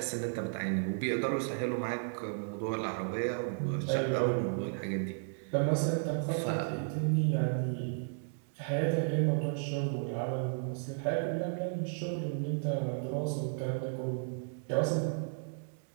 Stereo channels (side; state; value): left; silent; digital silence